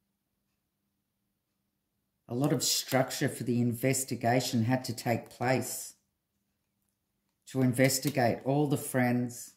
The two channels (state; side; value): identical; both; correlation 1.00